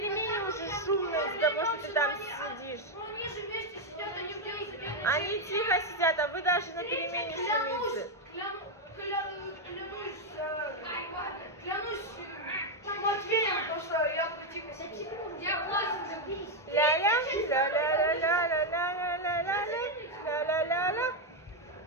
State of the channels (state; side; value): normal; both; correlation 0.03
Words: уже шумно из-за того, что ты там сидишь. Они тихо сидят, а вы даже на перемене шумите. Клянусь Матвеем, потому что я тихо сидел. Я влазил. Ля-ля, ля-ля-ля-ля-ля-ля-ля-ля-ля-ля-ля-ля-ля.